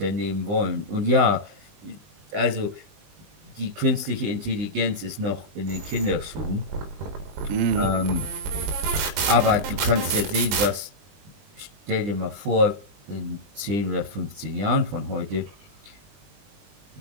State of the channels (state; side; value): late; left; 20 ms